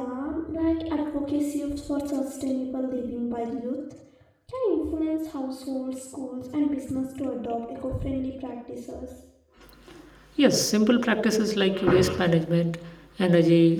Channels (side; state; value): both; identical; correlation 1.00